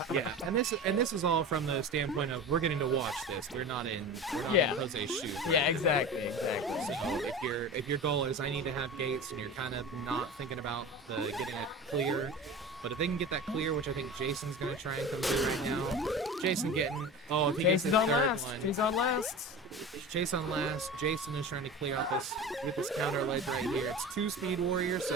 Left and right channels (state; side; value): normal; both; correlation 0.32